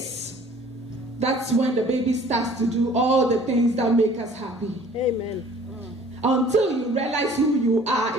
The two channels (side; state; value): both; normal; correlation 0.52